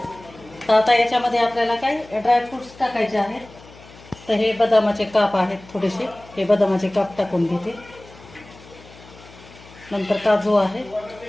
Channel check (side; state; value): left; noise; hum, 22 dB below the sound